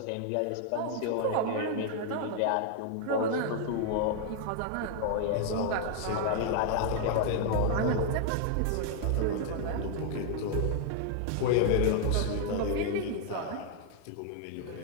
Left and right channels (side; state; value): both; different; correlation 0.00